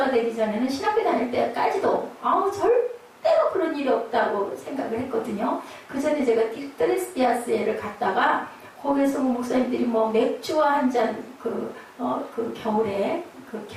되기 전에는 신학교 다닐 때까지도 절대로 그런 일이 없다고 생각을 했거든요. 그 전에 제가 트레스피아스에를 갔다가 거기에서 목사님들이 맥주와 한 잔 그 겨울에 그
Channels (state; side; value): identical; both; correlation 1.00